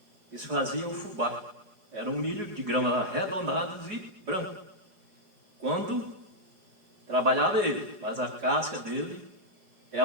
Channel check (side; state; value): left; late; 5.3 ms